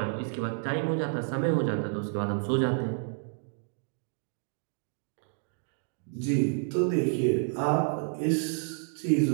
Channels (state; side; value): silent; left; 58 dB below the other